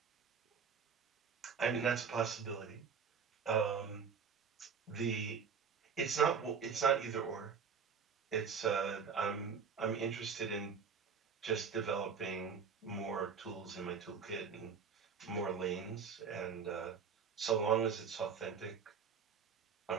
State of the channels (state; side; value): quieter; left; 6.3 dB